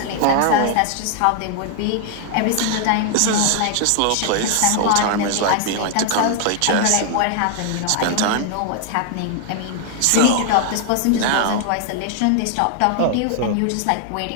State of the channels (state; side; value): different; both; correlation 0.00